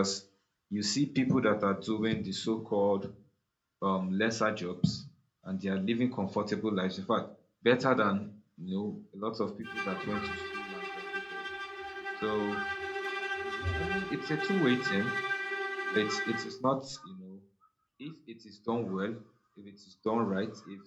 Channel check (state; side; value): identical; both; correlation 1.00